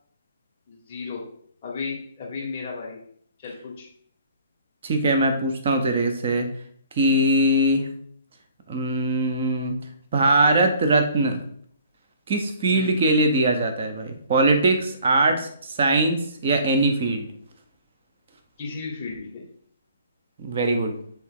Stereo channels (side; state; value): both; inverted; correlation -0.54